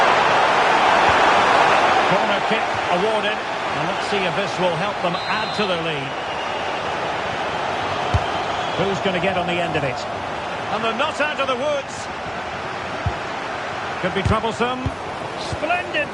Corner kick awarded. And let's see if this will help them add to their lead. Who's going to get on the end of it? And they're not out of the woods. Could be troublesome. Splendid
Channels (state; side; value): identical; both; correlation 1.00